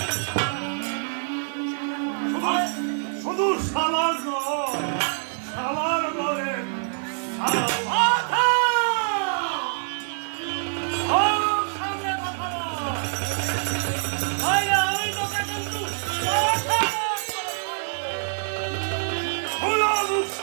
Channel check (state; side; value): silent; left; digital silence